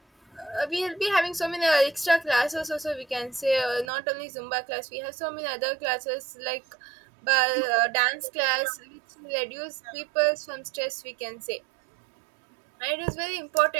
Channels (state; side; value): drops out; left; at 3.9 s